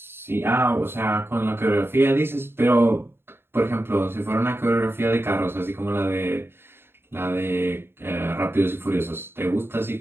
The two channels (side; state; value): left; late; 0.11 ms